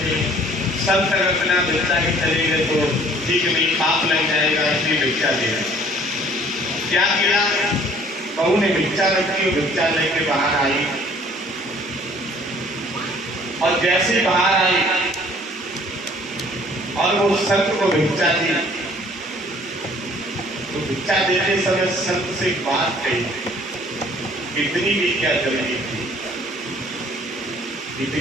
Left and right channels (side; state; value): both; normal; correlation 0.55